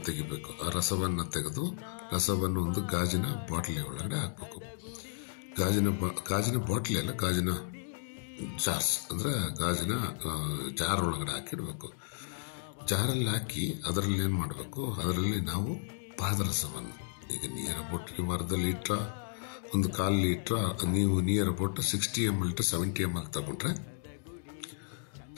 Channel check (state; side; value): silent; right; digital silence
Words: ತೆಗಿಬೇಕು. ಆ ರಸವನ್ನು ತೆಗೆದು ರಸವನ್ನು ಒಂದು ಗಾಜಿನ ಬಾಟ್ಲಿ ಒಳಗಡೆ ಹಾಕಬೇಕು. ಗಾಜಿನ ಬಾಟ್ಲಿ ಅಲ್ಲ, ಗಾಜಿನ ಜಾರ್ಸ್ ಅಂದರೆ ಗಾಜಿನ ಜಾರ್ ಒಳಗಡೆ ಹಾಕಿಡಬೇಕು. ಜಾರಲ್ಲಿ ಹಾಕಿ ಅದರಲ್ಲಿ ಏನು ಮಾಡಬೇಕು, ಅದರಲ್ಲಿ ನಾವು ಪಾದರಸವನ್ನು ಈಗ ನಿಯರ್ ಅಬೌಟ್ ನೀವು ಅರ್ಧ ಲೀಟ್ರ ಒಂದು 1/4 ಲೀಟ್ರ ನೀವು near about 60 ml to 70 ml ತಗೊಂಡ್ರೆ